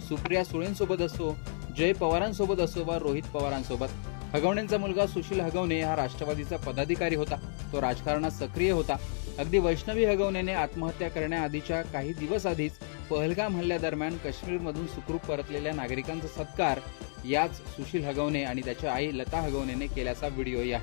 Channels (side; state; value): right; silent; digital silence